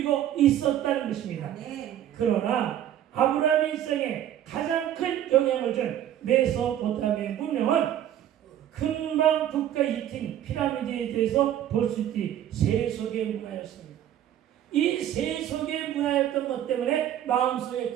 있었다는 것입니다. 아멘. 그러나 아브라함의 일생에 가장 큰 영향을 준 메소포타미아 문명은 금방 국가 이팀 피라미드에 대해서 볼 수 있듯이 세속의 문화였습니다. 이 세속의 문화였던 것 때문에 마음속에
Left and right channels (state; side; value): quieter; left; 11.3 dB